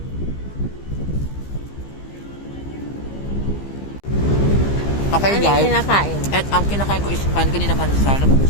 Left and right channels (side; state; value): right; late; 15 ms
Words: Okay Ano yung guys, kinakain? at ang kinakain ko is pan kanina pansal. Ito